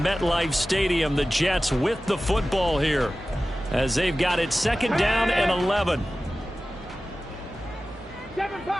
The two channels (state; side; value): normal; both; correlation 0.96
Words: MetLife Stadium. The Jets with the football here as they've got it 2nd down and 11. Seven